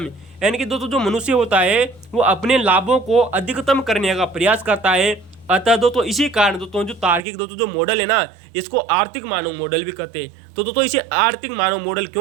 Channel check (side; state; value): left; drops out; at 7.2 s